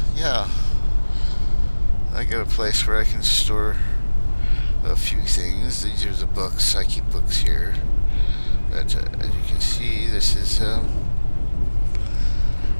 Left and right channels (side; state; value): both; inverted; correlation -1.00